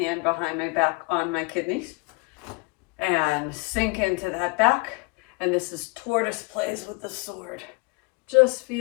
behind my back on my kidneys, and sink into that back. And this is Tortoise Plays with the sword. Just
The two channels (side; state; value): right; quieter; 29.3 dB